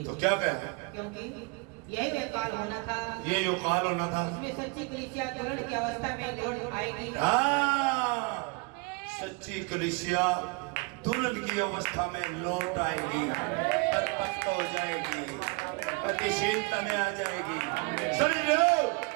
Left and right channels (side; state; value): left; quieter; 30.2 dB